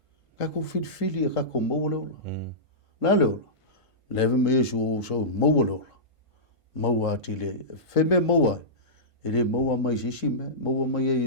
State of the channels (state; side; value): late; right; 1.5 ms